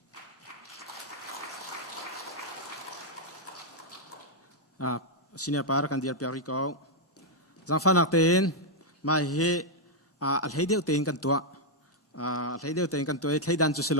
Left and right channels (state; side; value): normal; both; correlation -0.04